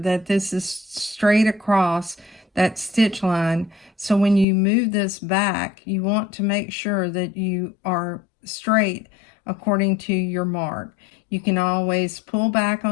this is straight across that stitch line. So when you move this back, you want to make sure that you are straight according to your mark. You can always pull back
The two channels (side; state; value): right; drops out; at 4.5 s